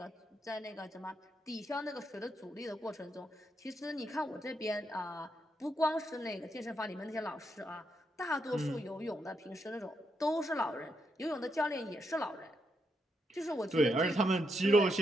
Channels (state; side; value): normal; both; correlation 0.80